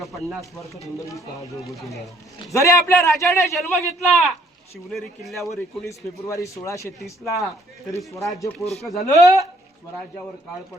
वर्षात हिंदवी स्वराज्य उभं केलं. जरी आपल्या राजाने जन्म घेतला शिवनेरी किल्ल्यावर 19 फेब्रुवारी 1630 ला, तरी स्वराज्य पोरकं झालं. स्वराज्यावर काळ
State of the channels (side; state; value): both; normal; correlation 0.62